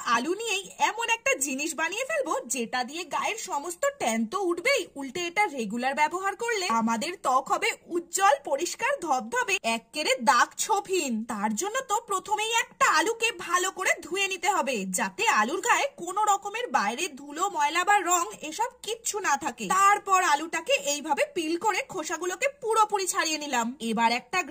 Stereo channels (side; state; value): both; identical; correlation 1.00